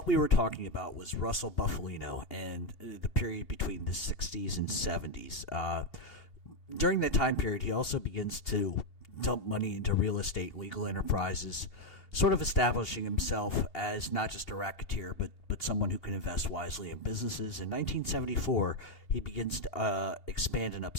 we were talking about was Russel Bufalino and the period between the 60s and 70s. During that time period, he also begins to dump money into real estate, legal enterprises, sort of establishing himself as not just a racketeer, but someone who can invest wisely in businesses. In 1974, he begins to expand in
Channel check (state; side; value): late; right; 2.8 ms